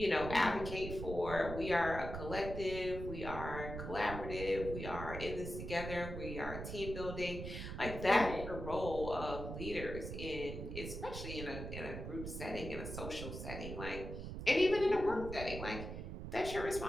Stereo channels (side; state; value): right; noise; rumble, 7 dB below the sound